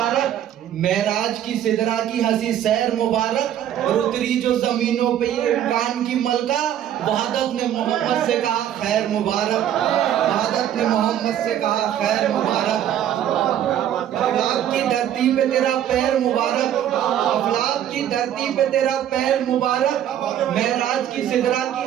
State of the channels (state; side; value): quieter; left; 10.7 dB